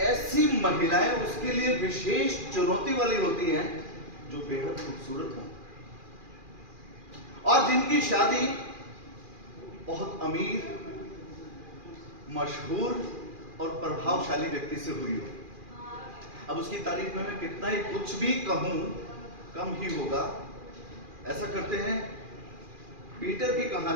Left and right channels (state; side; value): late; left; 2.4 ms